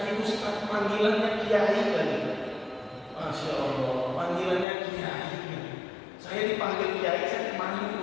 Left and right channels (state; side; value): drops out; right; at 4.7 s